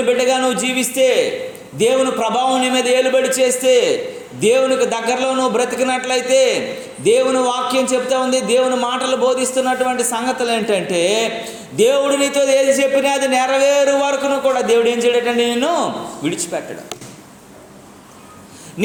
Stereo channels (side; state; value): both; identical; correlation 1.00